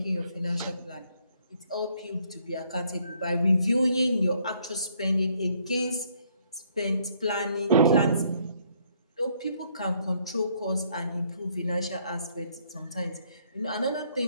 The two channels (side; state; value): both; inverted; correlation -0.67